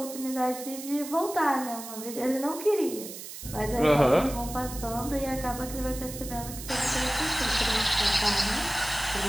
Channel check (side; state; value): right; noise; hiss, 11 dB below the sound